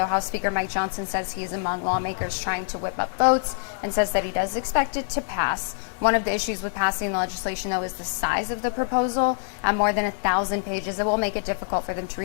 House Speaker Mike Johnson says he is among lawmakers trying to whip up votes and says that he does expect it to pass. One of the issues with passing the legislation, though, is the size of the proposal. At more than 1,000 pages, it will make it difficult for them to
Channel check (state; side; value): silent; right; 62 dB below the other